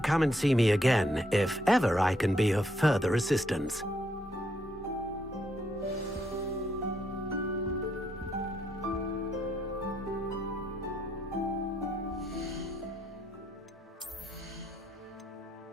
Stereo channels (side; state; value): both; normal; correlation 0.74